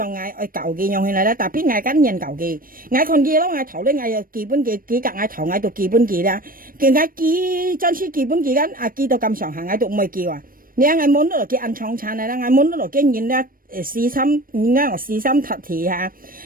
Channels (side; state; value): left; late; 0.41 ms